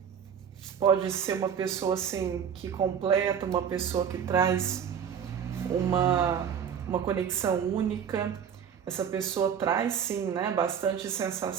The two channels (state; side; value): quieter; left; 7.9 dB